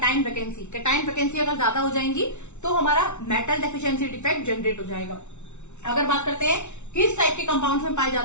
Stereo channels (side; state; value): right; late; 0.82 ms